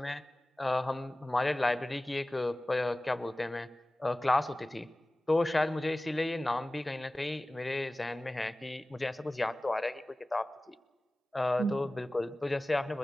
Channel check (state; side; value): normal; both; correlation 0.98